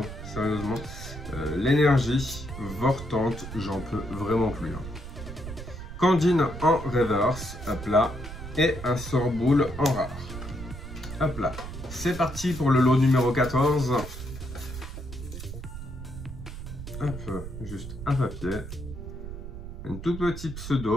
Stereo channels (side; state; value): right; noise; rumble, 10 dB below the sound